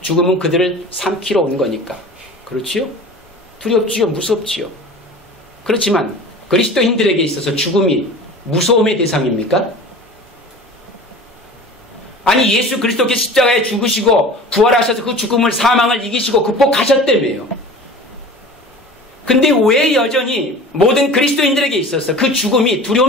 죽음은 그들을 삼키러 온 거니까. 그렇지요? 두렵지요? 무섭지요? 그렇지만 그리스도인들에게 있어서 죽음이 무서움의 대상입니까? 아니, 예수 그리스도께서 십자가에 죽으시고 부활하셔서 그 죽음을, 사망을 이기시고 극복하셨다며요. 근데 왜 여전히 모든 그리스도인들에게 있어서 그 죽음이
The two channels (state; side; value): normal; both; correlation 0.39